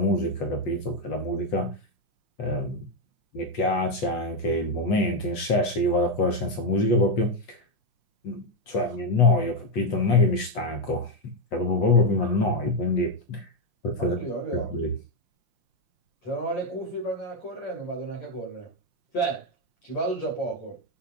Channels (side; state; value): right; late; 5.7 ms